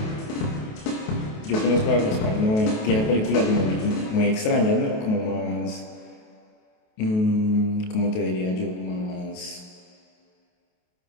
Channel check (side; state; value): right; late; 28 ms